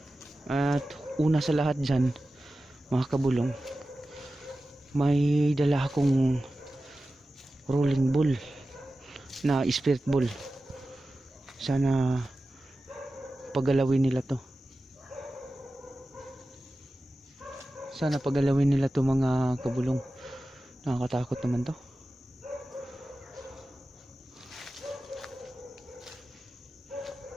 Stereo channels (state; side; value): normal; both; correlation 0.94